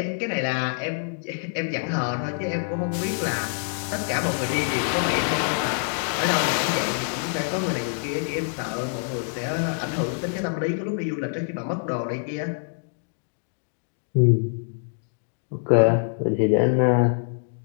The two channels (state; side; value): silent; right; 61 dB below the other